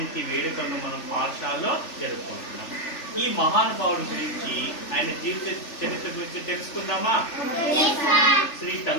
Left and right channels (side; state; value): right; late; 3.4 ms